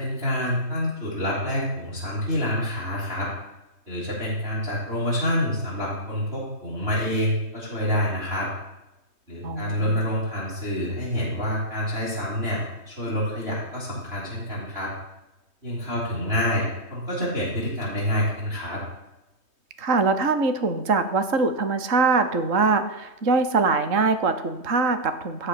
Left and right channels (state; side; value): late; left; 3.2 ms